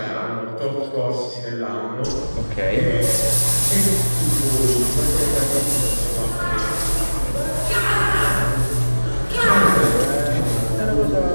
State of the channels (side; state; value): both; inverted; correlation -1.00